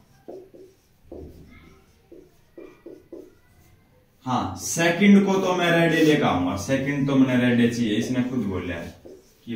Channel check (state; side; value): identical; both; correlation 1.00